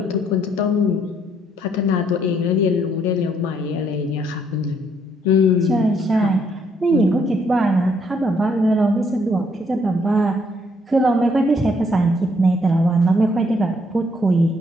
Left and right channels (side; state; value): both; normal; correlation 0.70